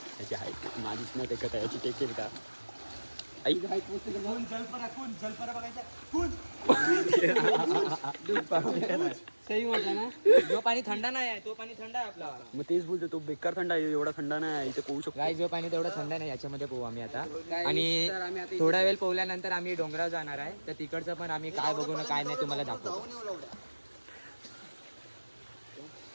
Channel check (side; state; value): both; inverted; correlation -1.00